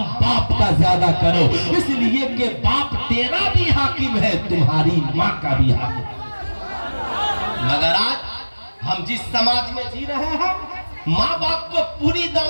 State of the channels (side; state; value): both; inverted; correlation -1.00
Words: باپ کا زیادہ کرو، اس لیے کہ باپ تیرا بھی حاکم ہے، تمہاری ماں کا بھی حاکم ہے. مگر آج ہم جس سماج میں جی رہے ہیں ماں باپ کو پوری